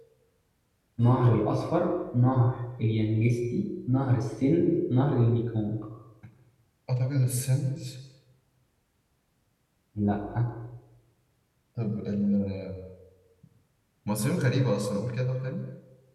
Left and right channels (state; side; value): identical; both; correlation 1.00